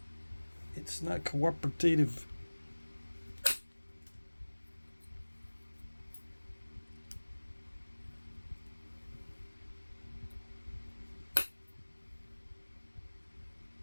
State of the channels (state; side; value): inverted; both; correlation -1.00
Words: It's not cooperative.